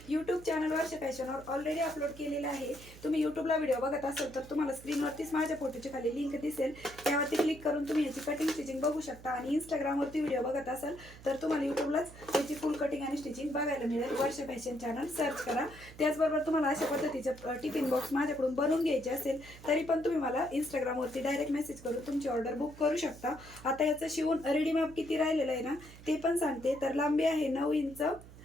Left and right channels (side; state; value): right; noise; hum, 18 dB below the sound